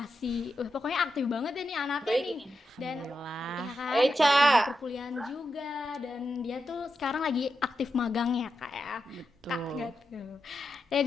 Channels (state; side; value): normal; both; correlation 0.87